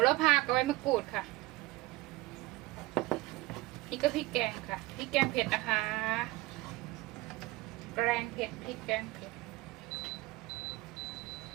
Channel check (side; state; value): left; quieter; 20.0 dB